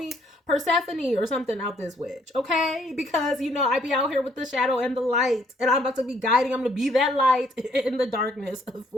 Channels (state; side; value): normal; both; correlation 0.66